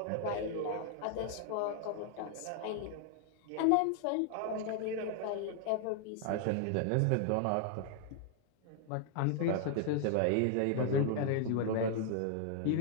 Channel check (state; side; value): different; both; correlation 0.00